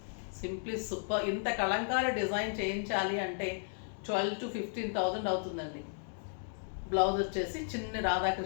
సింప్లీ సూపర్. ఇంత కలంకారీ డిజైన్ చేయించాలి అంటే 12,000 to 15,000 అవుతుందండి. బ్లౌజ్ వచ్చేసి చిన్న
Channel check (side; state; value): right; silent; digital silence